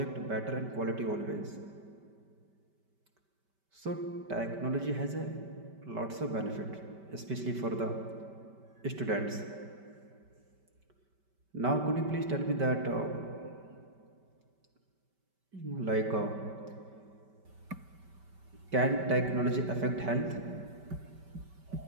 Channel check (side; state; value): left; late; 5.2 ms